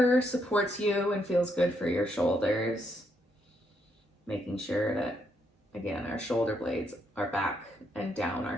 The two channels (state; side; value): normal; both; correlation 0.76